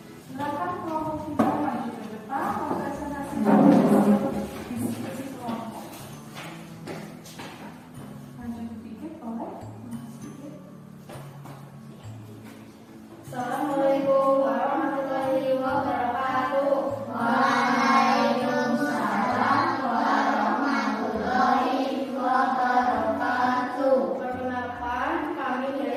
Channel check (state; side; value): identical; both; correlation 1.00